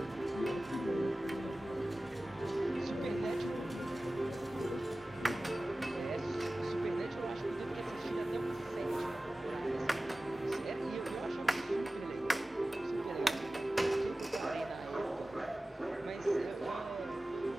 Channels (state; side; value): normal; both; correlation 0.96